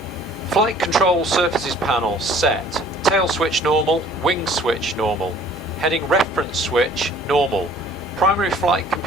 Flight control surfaces panel set. Tail switch normal, wing switch normal. Heading reference switch normal. Primary flight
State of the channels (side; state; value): both; normal; correlation 0.53